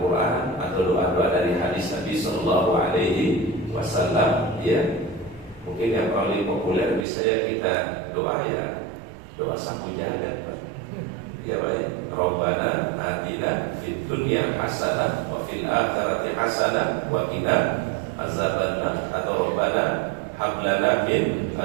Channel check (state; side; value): drops out; left; at 7.1 s